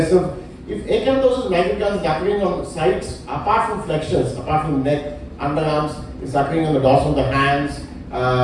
If acanthosis nigricans is occurring on sites apart from flexures, apart from neck, underarms, it's occurring on the dorsal of the hands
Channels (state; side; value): identical; both; correlation 1.00